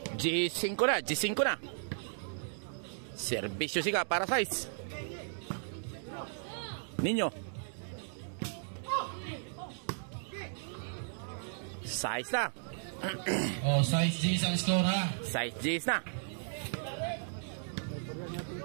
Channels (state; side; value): silent; left; digital silence